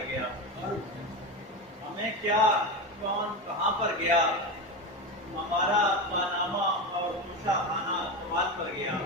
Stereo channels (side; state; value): both; normal; correlation 0.19